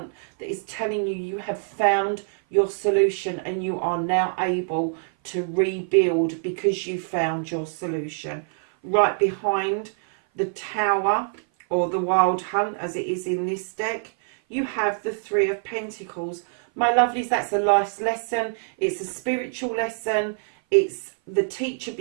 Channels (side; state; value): left; silent; 57 dB below the other